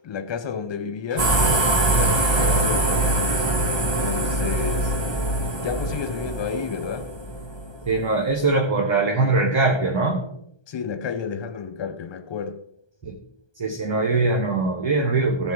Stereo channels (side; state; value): right; late; 1.2 ms